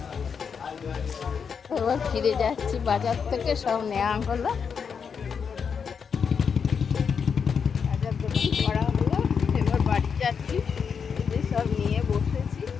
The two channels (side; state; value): right; quieter; 6.4 dB